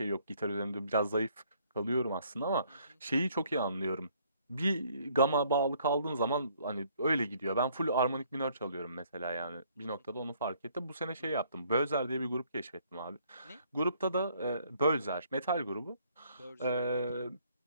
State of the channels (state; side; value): inverted; both; correlation -0.64